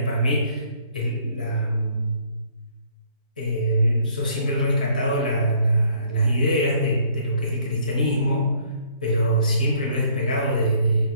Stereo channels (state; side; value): inverted; both; correlation -0.63